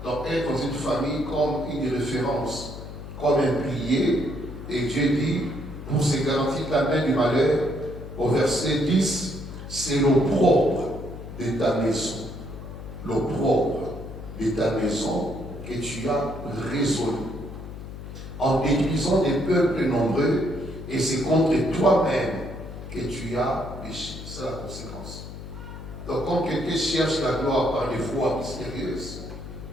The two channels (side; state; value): left; noise; hum, 11 dB below the sound